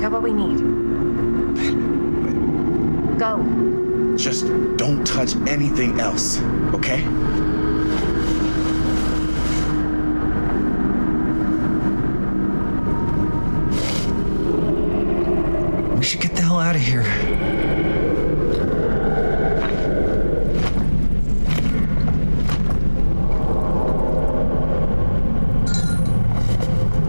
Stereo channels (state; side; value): inverted; both; correlation -1.00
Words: what we need. Go. Just don't touch anything else, okay? We should get the hell out of here.